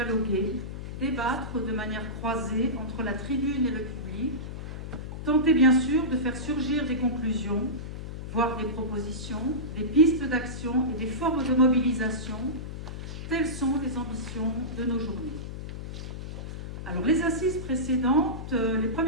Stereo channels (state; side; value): noise; left; hum, 8 dB below the sound